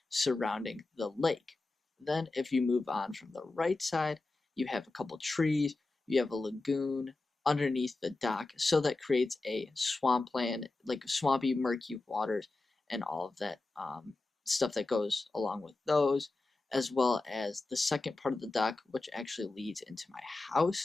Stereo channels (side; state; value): right; quieter; 3.2 dB